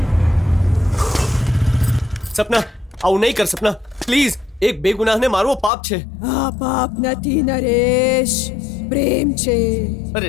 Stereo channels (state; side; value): drops out; right; at 5.7 s